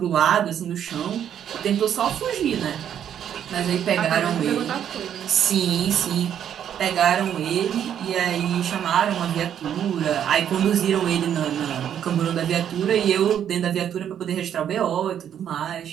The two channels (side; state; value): left; quieter; 9.5 dB